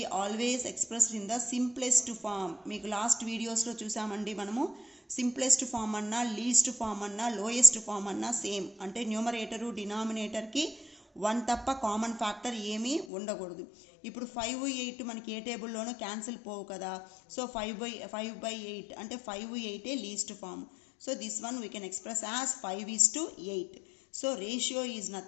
always expressed in the simplest form. మీకు last వీడియోస్లో చూసామండి మనము, simplest form అన్నా, least form అన్నా, lowest form అన్నా same. అంటే numerator డినామినేటర్కి 1 తప్ప కామన్ ఫ్యాక్టర్ ఏమీ ఉండకూడదు. ఇప్పుడు 5, 8 మనకి ఏ టేబుల్లోనూ క్యాన్సిల్ పోవు కదా. సో 5/8 అంటే 5, 8 least form. So this one we can express as 5:8. So ratio is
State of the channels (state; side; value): drops out; right; at 13.1 s